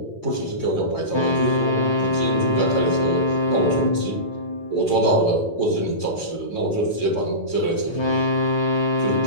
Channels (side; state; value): right; late; 8.9 ms